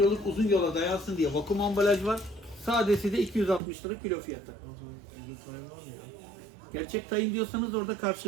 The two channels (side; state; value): left; drops out; at 3.6 s